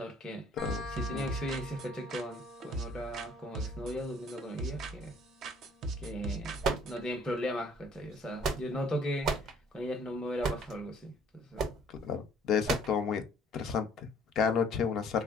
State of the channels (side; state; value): both; normal; correlation 0.58